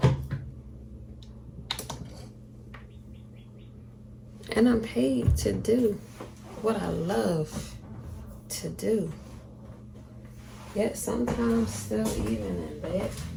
And I'm paid to do what I love to do. Yet sometimes, still even in that,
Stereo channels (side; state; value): both; identical; correlation 1.00